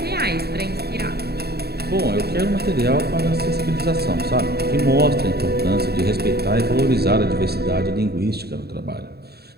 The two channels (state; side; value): late; left; 0.47 ms